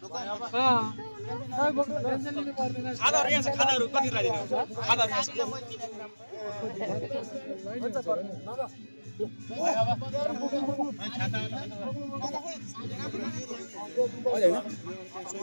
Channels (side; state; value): both; inverted; correlation -1.00